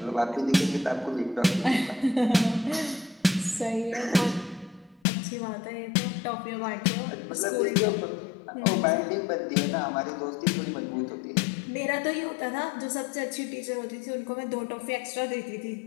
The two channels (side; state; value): right; drops out; at 5.0 s